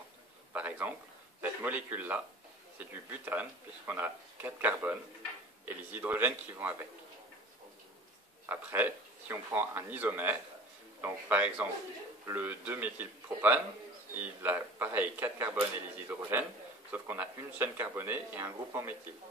Par exemple, cette molécule-là, c'est du butane, puisqu'on a 4 carbones et les hydrogènes qui vont avec. Après, si on prend un isomère, donc par exemple le 2-méthylpropane, il a pareil 4 carbones et les hydrogènes, sauf qu'on a une chaîne carbonée et un groupe en méthyle.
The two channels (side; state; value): both; normal; correlation 0.42